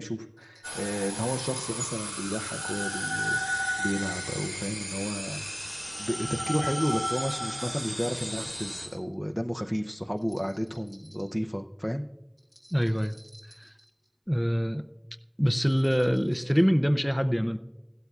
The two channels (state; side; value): identical; both; correlation 1.00